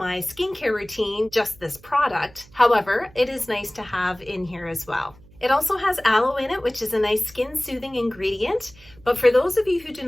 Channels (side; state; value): right; noise; hum, 25 dB below the sound